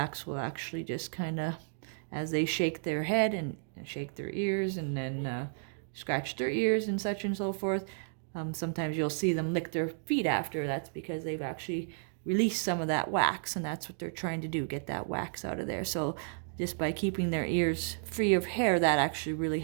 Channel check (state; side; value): silent; left; digital silence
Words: will actually just kind of, as they shake their head and shake their ears and then scratch their ears and such and so forth, sometimes you'll see them lick their feet after. That's because they've actually release some of that wax, and that's what they're trying to do, get that wax out of there. So just by keeping their ears free of hair, that actually really